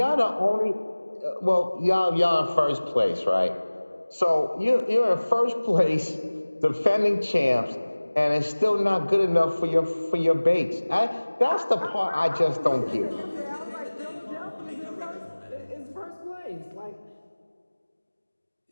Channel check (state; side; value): inverted; both; correlation -1.00